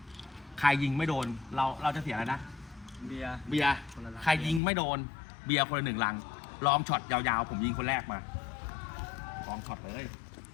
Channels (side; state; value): right; drops out; at 4.6 s